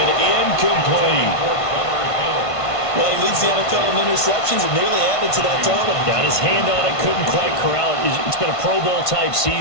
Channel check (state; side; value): late; right; 1.5 ms